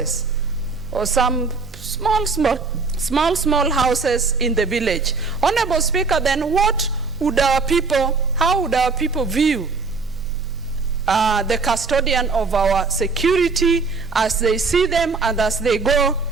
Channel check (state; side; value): quieter; left; 4.4 dB